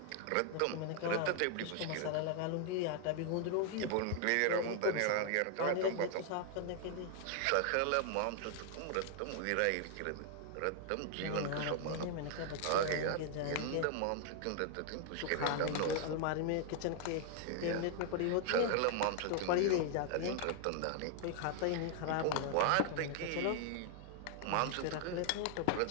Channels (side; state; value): both; different; correlation 0.00